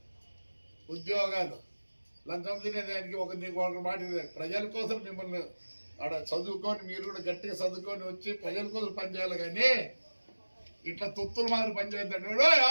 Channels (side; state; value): both; inverted; correlation -1.00